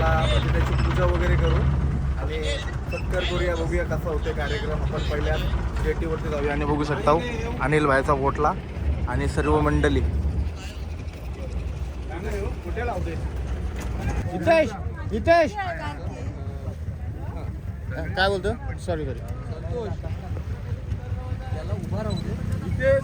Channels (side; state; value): both; identical; correlation 1.00